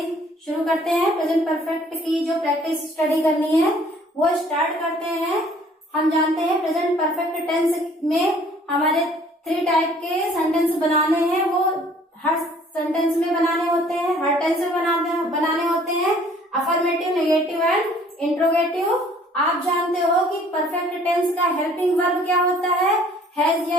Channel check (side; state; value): both; normal; correlation 0.56